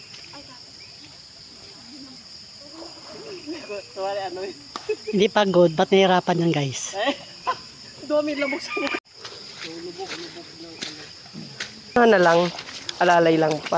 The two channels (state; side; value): identical; both; correlation 1.00